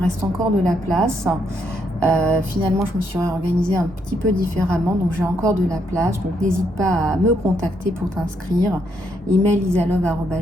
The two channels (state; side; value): normal; both; correlation 0.75